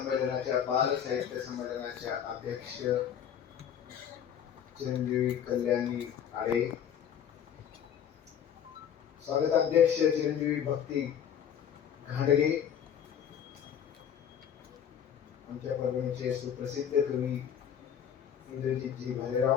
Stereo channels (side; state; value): right; quieter; 8.8 dB